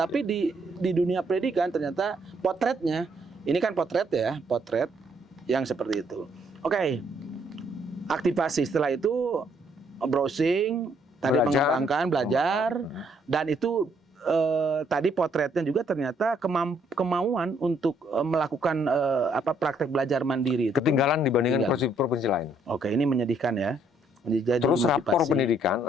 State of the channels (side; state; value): both; normal; correlation 0.69